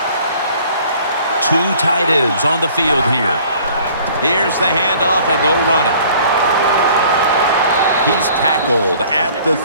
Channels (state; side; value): inverted; both; correlation -0.53